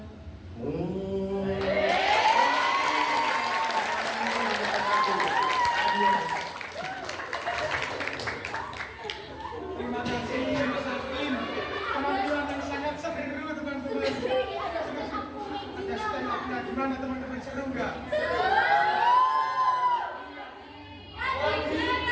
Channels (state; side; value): identical; both; correlation 1.00